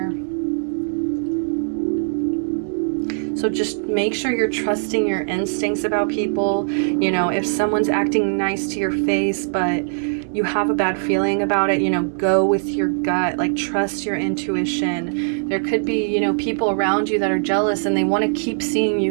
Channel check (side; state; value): left; silent; 65 dB below the other